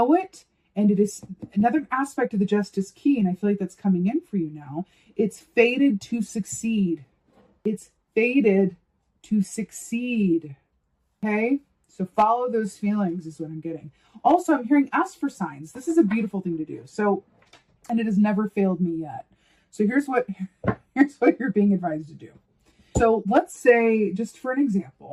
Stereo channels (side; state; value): both; identical; correlation 1.00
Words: it. And it is another aspect of the justice key, and I feel like that's coming in for you now. It's fated to succeed. It's fated to succeed. Okay? So follow those feelings is what I'm getting. Also, I'm hearing ask for signs. This is a beautiful thing to do. So, and it has never failed me yet. So here's what you're being advised to do. So let's say, just for an